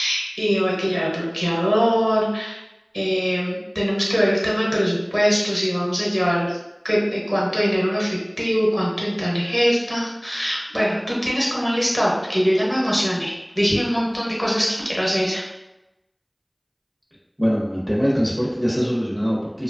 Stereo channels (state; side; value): identical; both; correlation 1.00